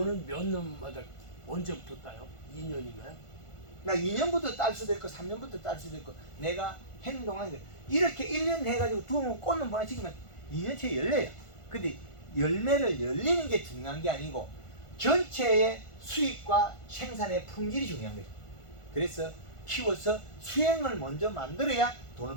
몇 년마다 언제부터 따요? 2년인가요? 나 2년부터 딸 수도 있고 3년부터 딸 수도 있고 내가 행동하는 거 이렇게 1년 해가지고 두면 꽃은 보내치기면 2년째 열려요. 근데 열매를 열리는 게 중요한 게 아니고 전체의 수익과 생산의 품질이 중요한 거죠. 그래서 키워서 수행을 먼저 만들어야 돈을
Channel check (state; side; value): late; right; 1.5 ms